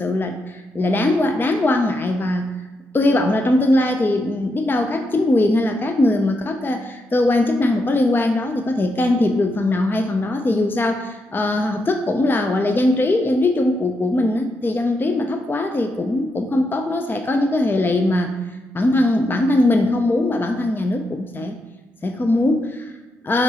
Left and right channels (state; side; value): normal; both; correlation 0.83